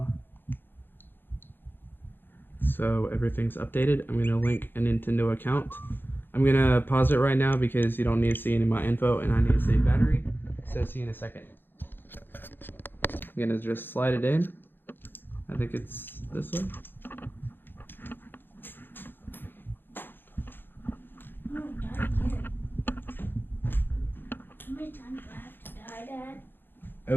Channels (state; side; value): late; right; 0.098 ms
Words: So everything's updated. I'm gonna link a Nintendo account. I'm gonna pause it right now because you don't need to see any of my info and I need to save battery. So see you in a second. I'm gonna just slide it in. I think it's this way. No, die again. How many times do I have to die, Dad?